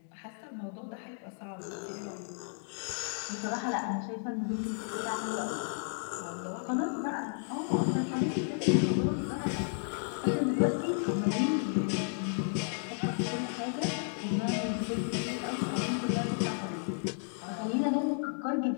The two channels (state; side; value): silent; right; 56 dB below the other